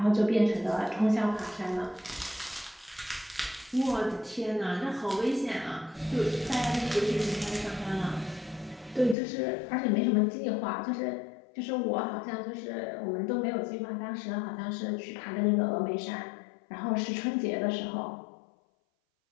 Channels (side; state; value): right; drops out; at 9.2 s